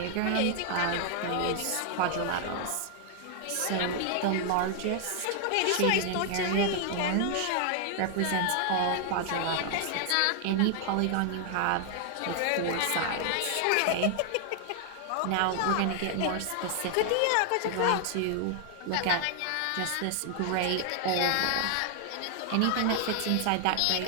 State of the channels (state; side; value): different; both; correlation 0.00